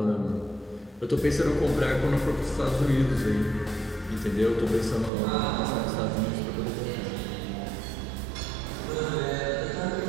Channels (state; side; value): drops out; left; at 5.1 s